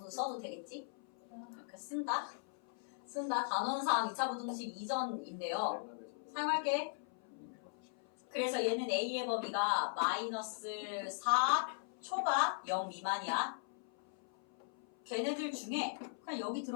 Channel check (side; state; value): right; silent; 52 dB below the other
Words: 써도 되겠지? 이렇게 쓴다. 단원상 2차 부등식 이전인데요. 사용할게. 그래서 얘는 A의 범위가 마이너스 4 초가 0 미만이야. 걔네들 중에 그냥 여기